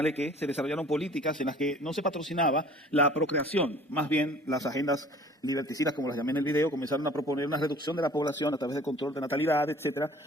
que se desarrollaron políticas en las que no se patrocinaba la procreación, más bien las agendas liberticidas, como las llamé en el video, comenzaron a proponer una reducción de la población a través del control de natalidad, etcétera,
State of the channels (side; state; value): both; normal; correlation 0.50